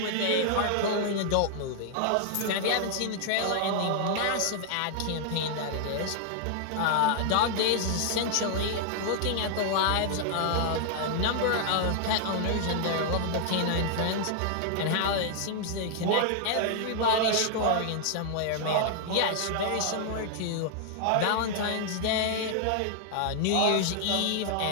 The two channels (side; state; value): both; different; correlation -0.01